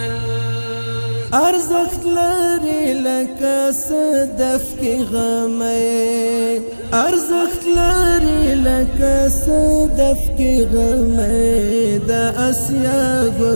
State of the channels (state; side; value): inverted; both; correlation -1.00